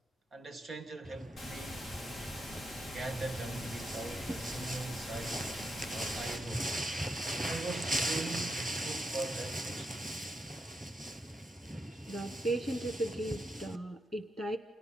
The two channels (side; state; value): both; normal; correlation 0.84